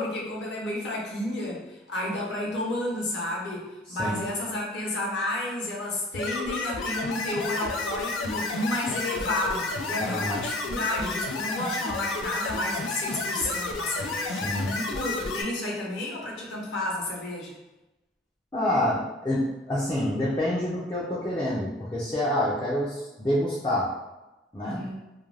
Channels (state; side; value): normal; both; correlation 0.45